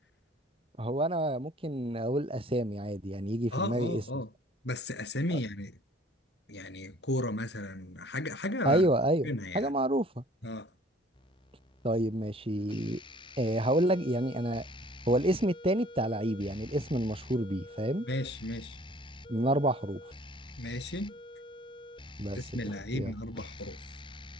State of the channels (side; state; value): both; normal; correlation 0.54